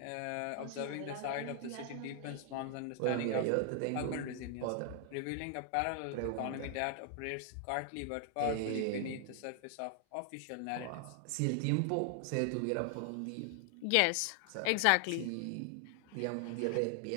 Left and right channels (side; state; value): both; different; correlation 0.00